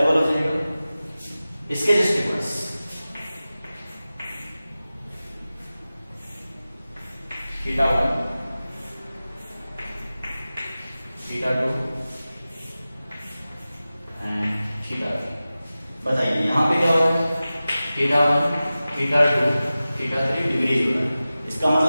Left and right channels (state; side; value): inverted; both; correlation -0.96